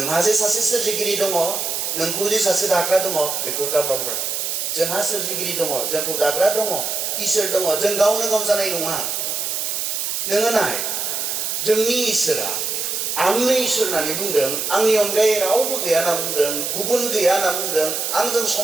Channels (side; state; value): right; noise; hiss, 2 dB below the sound